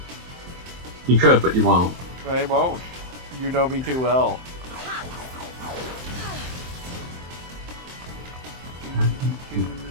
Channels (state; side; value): late; left; 23 ms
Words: You could, but you won't. I won't. You know me too well.